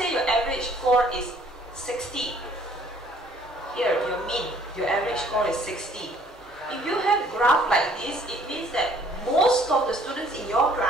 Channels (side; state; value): both; normal; correlation 0.59